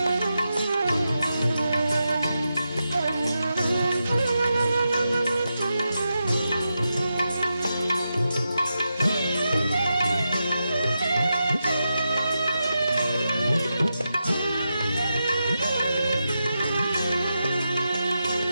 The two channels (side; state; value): both; inverted; correlation -0.87